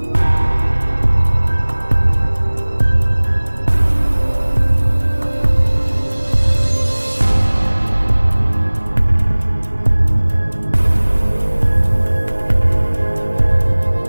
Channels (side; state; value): both; inverted; correlation -1.00